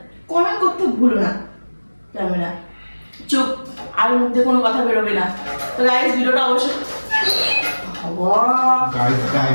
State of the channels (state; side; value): inverted; both; correlation -1.00